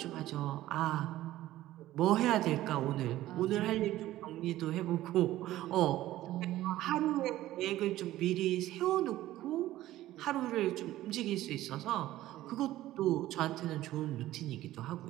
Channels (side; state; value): left; quieter; 15.0 dB